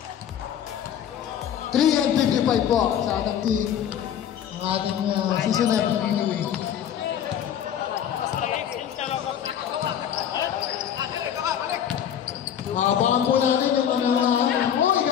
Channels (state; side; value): quieter; right; 9.5 dB